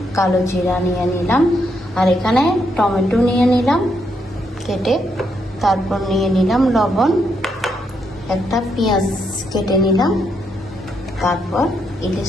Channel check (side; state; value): both; normal; correlation 0.78